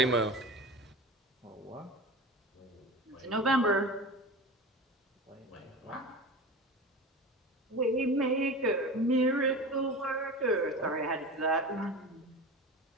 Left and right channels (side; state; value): both; normal; correlation 0.31